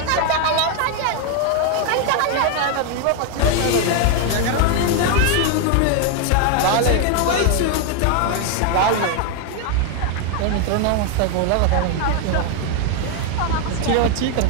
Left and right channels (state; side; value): different; both; correlation 0.01